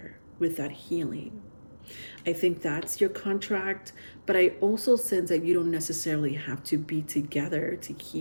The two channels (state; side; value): inverted; both; correlation -1.00